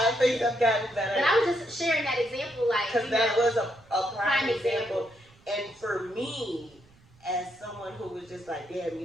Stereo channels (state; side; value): noise; right; rumble, 29 dB below the sound